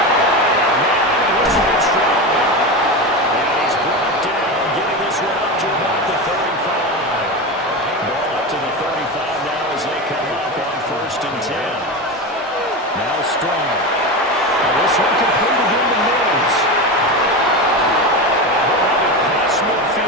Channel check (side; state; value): both; normal; correlation 0.21